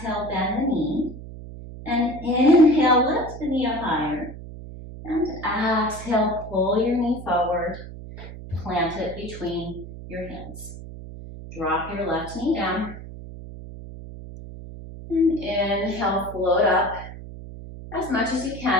bend the knee. And inhale, lift the knee up higher. And exhale, pull your knee forward. Plant it between your hands. Drop your left knee down. And inhale, float up as much as you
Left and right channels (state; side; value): noise; right; hum, 13 dB below the sound